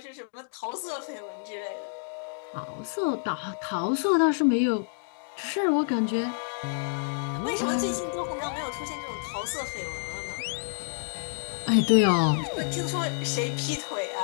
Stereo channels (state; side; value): silent; right; digital silence